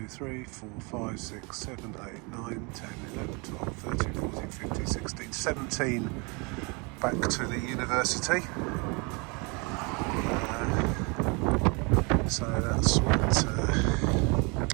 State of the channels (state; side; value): quieter; left; 30.5 dB